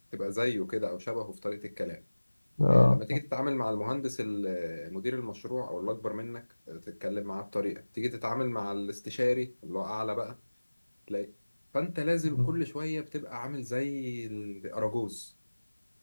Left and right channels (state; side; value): inverted; both; correlation -1.00